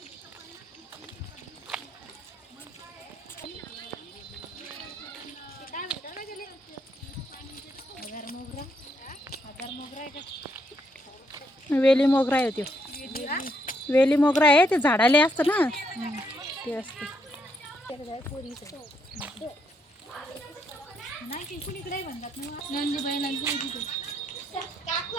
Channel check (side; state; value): both; normal; correlation 0.75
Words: वेली मोगरा आहे तो. वेली मोगरा आहे ते झाडाले असतं ना ते असतं.